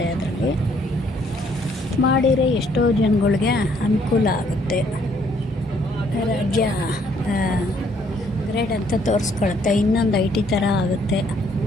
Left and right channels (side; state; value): both; normal; correlation 0.66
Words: ಅದರಲ್ಲಿ ಮಾಡಿದರೆ ಎಷ್ಟೋ ಜನಗಳಿಗೆ ಅನುಕೂಲ ಆಗುತ್ತೆ. ರಾಜ್ಯ ಗ್ರೇಡ್ ಅಂತ ತೋರಿಸ್ಕೊಳುತ್ತೆ, ಇನ್ನೊಂದು IT ಥರ ಆಗುತ್ತೆ.